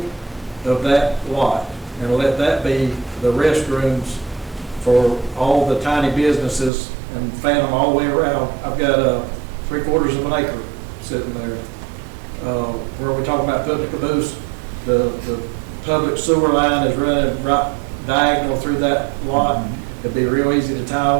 of that lot and let that be the restrooms for all the tiny businesses and fan them all the way around. I've got 3/4 of an acre sitting there. Where we talk about putting the caboose, the public sewer line is running right diagonal through that lot. It'd be real easy to tie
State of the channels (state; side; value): drops out; left; at 6.7 s